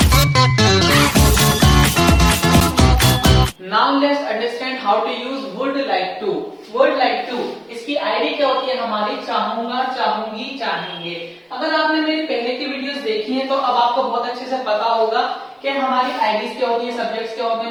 Now let's understand how to use would like to. Would like to इसकी ID क्या होती है हमारी? चाहूंगा, चाहूंगी, चाहेंगे। अगर आपने मेरी पहले की वीडियोस देखी हैं तो अब आपको बहुत अच्छे से पता होगा कि हमारी आईडीज क्या होती है, सब्जेक्ट्स क्या होते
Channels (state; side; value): identical; both; correlation 1.00